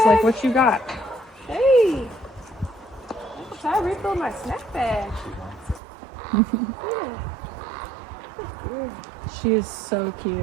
like, what you got? Hey. I refilled my snack bag. She is so cute.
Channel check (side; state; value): left; drops out; at 5.8 s